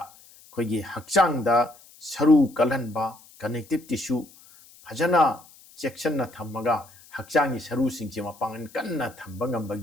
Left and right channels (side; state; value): left; noise; hiss, 24 dB below the sound